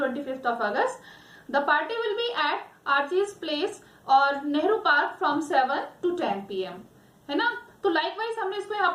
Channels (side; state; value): both; identical; correlation 1.00